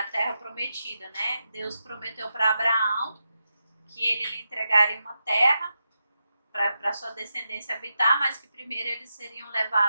terra prometida, né? Deus prometeu para Abraão que ele lhe entregaria uma terra para sua descendência habitar, mas que primeiro eles seriam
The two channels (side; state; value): both; inverted; correlation -0.87